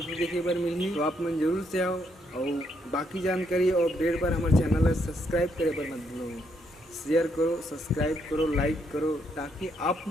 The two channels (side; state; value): both; normal; correlation 0.75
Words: देखे बर मिली तो आप मन जरूर से आओ। और बाकी जानकारी और अपडेट पर हमारे चैनल को सब्सक्राइब करे पर मत भूलो, शेयर करो, सब्सक्राइब करो, लाइक करो ताकि आप